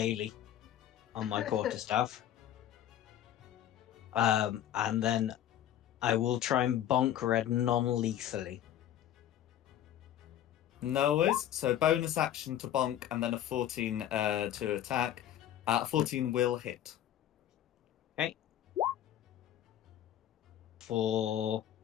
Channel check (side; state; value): right; quieter; 11.4 dB